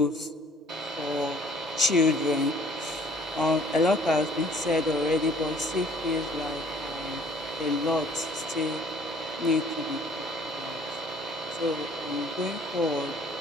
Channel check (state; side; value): normal; both; correlation 0.56